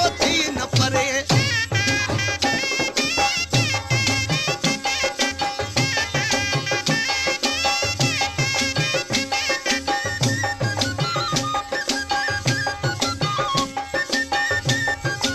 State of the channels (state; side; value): identical; both; correlation 1.00